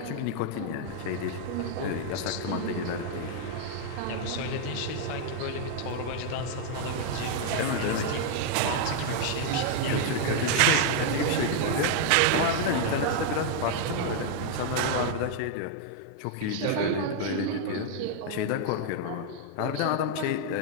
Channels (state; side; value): different; both; correlation 0.00